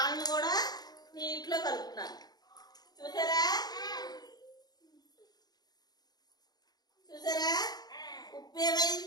కూడా నీటిలో కలుపుతున్నాను చూసారా? ఉప్పు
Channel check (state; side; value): late; right; 0.19 ms